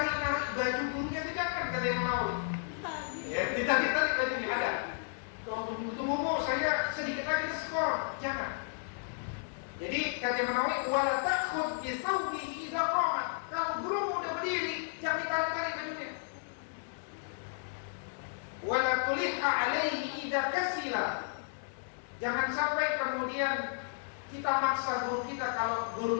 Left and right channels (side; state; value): right; silent; digital silence